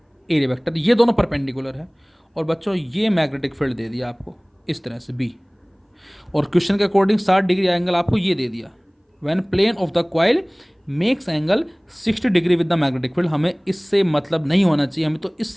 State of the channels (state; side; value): identical; both; correlation 1.00